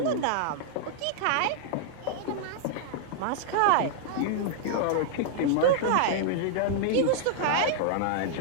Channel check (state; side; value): different; both; correlation -0.01